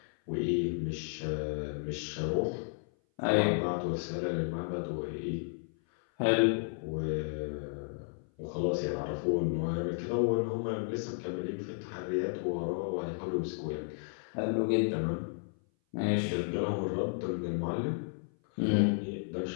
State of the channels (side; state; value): right; silent; 56 dB below the other